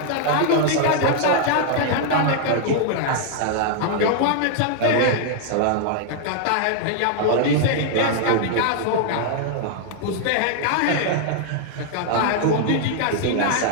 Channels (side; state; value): both; different; correlation 0.00